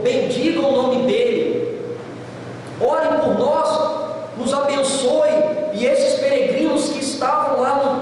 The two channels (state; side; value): identical; both; correlation 1.00